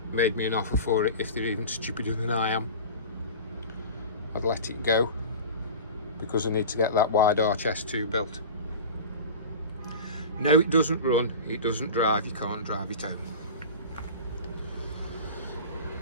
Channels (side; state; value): both; inverted; correlation -0.33